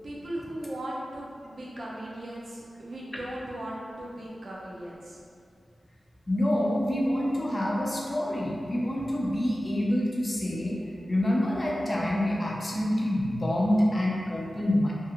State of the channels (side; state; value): both; normal; correlation 0.95